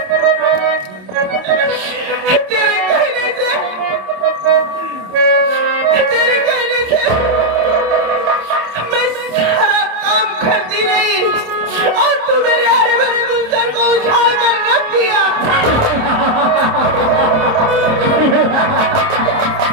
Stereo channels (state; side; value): late; left; 27 ms